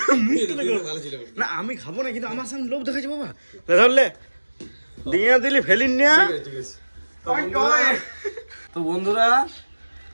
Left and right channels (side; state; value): both; inverted; correlation -1.00